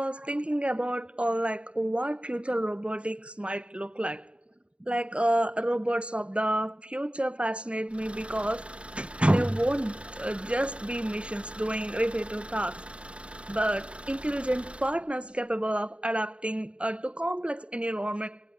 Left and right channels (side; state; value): left; late; 0.059 ms